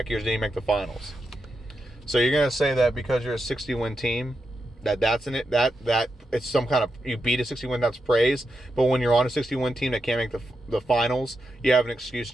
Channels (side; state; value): both; normal; correlation 0.86